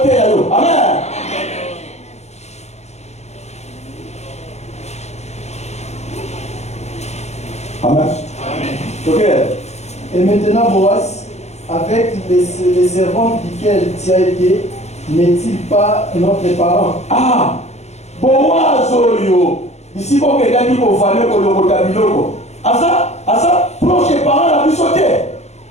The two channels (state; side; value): late; right; 0.32 ms